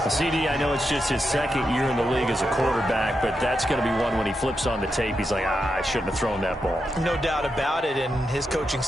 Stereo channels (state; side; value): normal; both; correlation 0.86